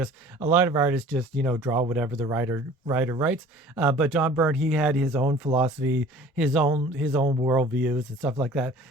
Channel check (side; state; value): both; normal; correlation 0.47